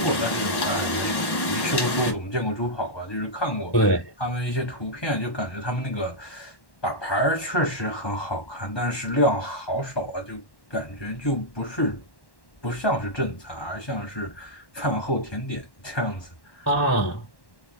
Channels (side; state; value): right; late; 1.1 ms